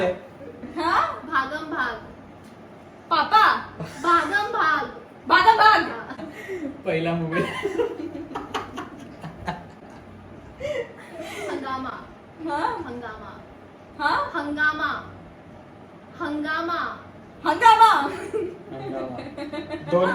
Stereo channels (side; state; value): both; identical; correlation 1.00